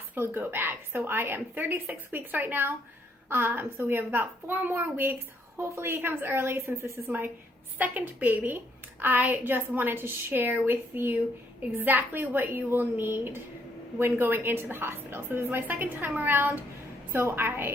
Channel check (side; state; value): both; normal; correlation 0.71